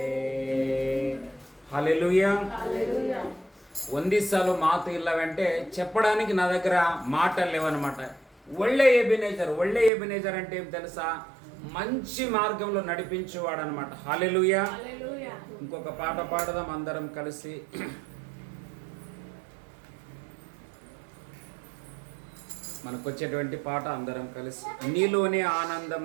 హల్లెలూయా. ಒಂದೇ సాలు మాత ఇల్లవంటే చెప్పడానికి నా దగ్గర మాటలు లేవన్నమాట. ఒళ్ళే ఎబినేజర్ అంటే ఏం తెలుసా? మంచి మార్గంలో నడిపించేవాడు అనమాట. హల్లెలూయా. ఇంకొక పాట పాడదాం అందరం కలిసి. మనకు వచ్చేటువంటి పాట అందరం కలిసి. నీలోనే ఆనందం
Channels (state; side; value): drops out; left; at 9.9 s